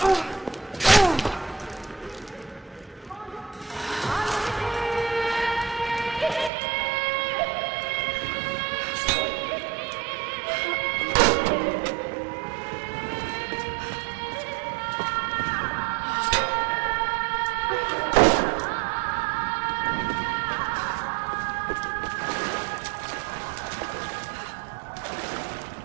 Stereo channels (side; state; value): left; drops out; at 6.5 s